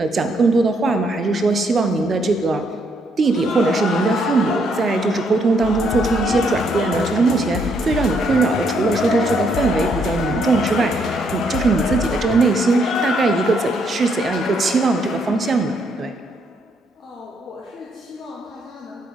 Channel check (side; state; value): both; normal; correlation 0.73